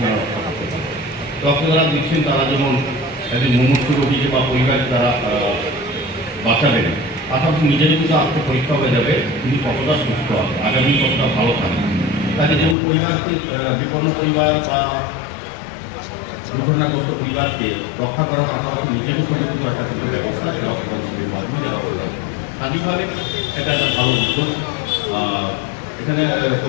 রক্ষা করতে পারে। রক্তদান দিচ্ছেন তারা যেমন একজন মুমূর্ষু রোগীকে বা পরিবার তারা বাঁচাবেন, পাশাপাশি নিজের কিন্তু আত্ম পরীক্ষা হয়ে যাবে তিনি কতটা সুস্থ হবে, আগামী কতটা ভালো থাকবে। তাকে যেমন পরিবারকে বিপন্ন পরিবার বা দুর্ঘটনাগ্রস্ত পরিবারকে রক্ষা করার পাশাপাশি নিজেরও সুরক্ষিত রাখার কিন্তু ব্যবস্থা রক্তদান শিবিরের মাধ্যমে যারা রক্তদান করে। স্থানীয়ভাবে এটা একটা ভালো উদ্যোগ। এখানে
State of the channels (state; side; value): drops out; right; at 12.8 s